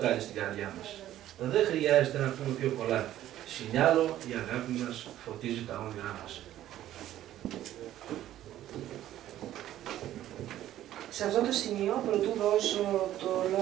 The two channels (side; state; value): left; quieter; 12.9 dB